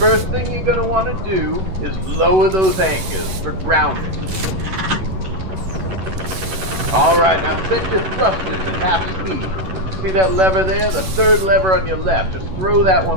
thing you're gonna want to do is lower those anchors for grounding. All right, now set your thrusters at half speed. See that lever there? The third lever on your left. Just throw that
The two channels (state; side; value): late; left; 11 ms